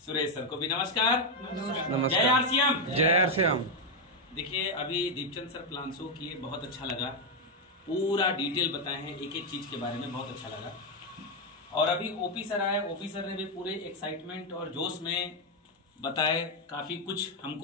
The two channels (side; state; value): both; normal; correlation 0.03